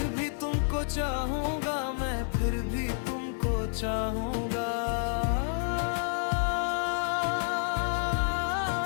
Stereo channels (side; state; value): right; silent; 58 dB below the other